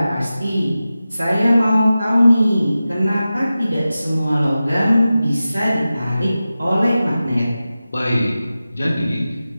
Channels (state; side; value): inverted; both; correlation -0.94